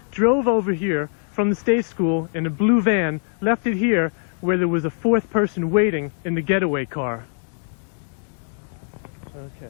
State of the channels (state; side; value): silent; right; 62 dB below the other